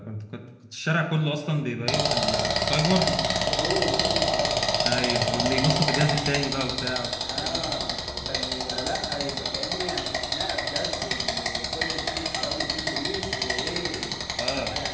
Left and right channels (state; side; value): identical; both; correlation 1.00